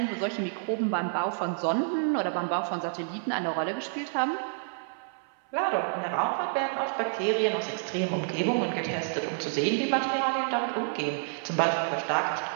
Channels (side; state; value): left; silent; 59 dB below the other